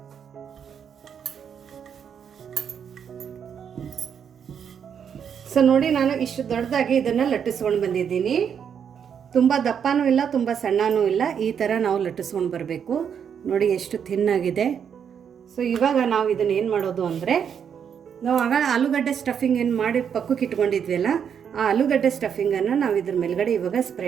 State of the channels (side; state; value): left; quieter; 7.7 dB